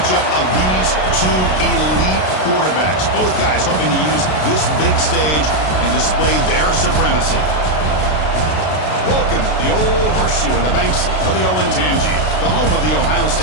of these two elite quarterbacks. Both guys hoping to use this big stage and display their supremacy. Welcome to the old horseshoe on the banks of the Olentangy, the home of the Ohio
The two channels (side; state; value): right; late; 33 ms